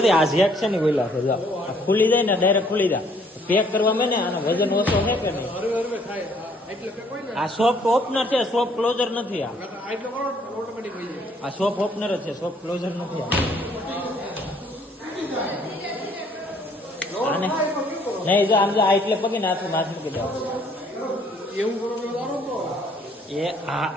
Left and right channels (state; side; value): normal; both; correlation 0.63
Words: આ ઝેક છે ને બોલા છે જો ખુલી જાય ને ડાયરેક્ટ ખુલી જાય પેક કરવા મેં ને આનો વજન ઓછો છે કે નહીં આ સોફ્ટ ઓપનર છે સોફ્ટ ક્લોઝર નથી આ સોફ્ટ ઓપનર જ છે સોફ્ટ ક્લોઝર નથી આને નહીં જો આમ જો આ એટલે પગે નાથ મૂકી દેવા એ